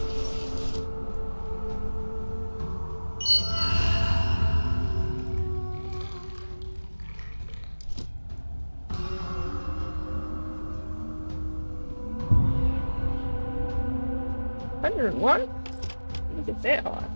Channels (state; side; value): inverted; both; correlation -1.00